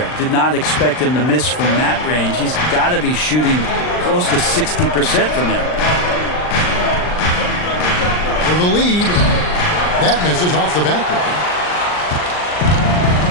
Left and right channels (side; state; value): right; late; 39 ms